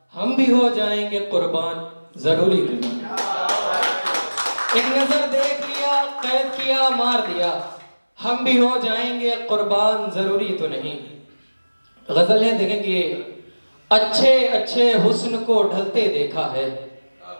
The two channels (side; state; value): both; inverted; correlation -1.00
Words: हम भी हो जाएंगे कुर्बान जरूरी तो नहीं। एक नजर देख लिया कैद किया मार दिया, हम भी हो जाएंगे कुर्बान जरूरी तो नहीं। गजल है, देखें कि अच्छे अच्छे हुस्न को ढलते देखा है,